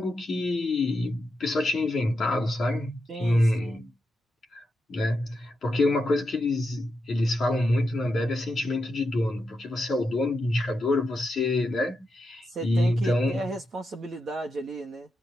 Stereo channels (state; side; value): normal; both; correlation 0.86